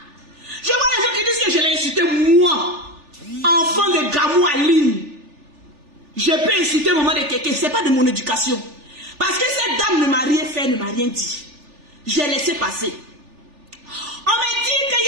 Je vois les gens qui disent que je l'ai insulté moi. Enfant de Gamou Aline. Je peux insulter maman de quelqu'un. Ce n'est pas de mon éducation. Parce que cette dame ne m'a rien fait, ne m'a rien dit. J'ai laissé passer. On me dit que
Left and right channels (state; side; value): late; left; 3.4 ms